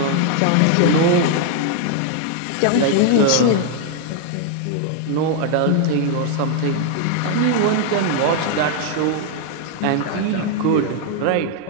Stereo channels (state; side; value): different; both; correlation 0.00